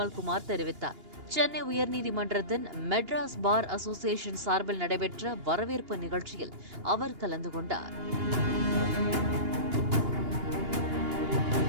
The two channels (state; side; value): late; left; 2.8 ms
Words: தெரிவித்தார். சென்னை உயர்நீதிமன்றத்தின் மெட்ராஸ் பார் அசோசியேஷன் சார்பில் நடைபெற்ற வரவேற்பு நிகழ்ச்சியில் அவர் கலந்து கொண்டார்.